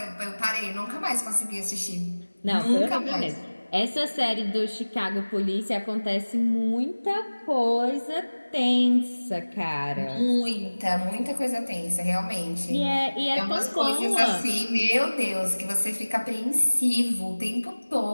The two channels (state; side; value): inverted; both; correlation -1.00